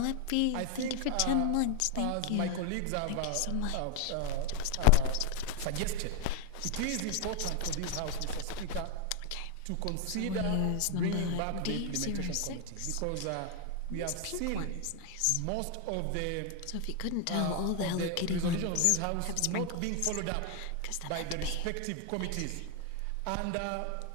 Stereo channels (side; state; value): both; different; correlation 0.01